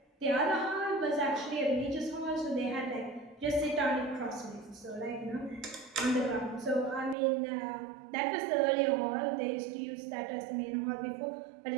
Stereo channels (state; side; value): drops out; left; at 7.2 s